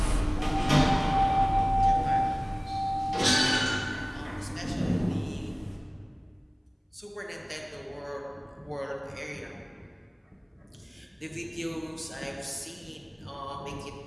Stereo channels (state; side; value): identical; both; correlation 1.00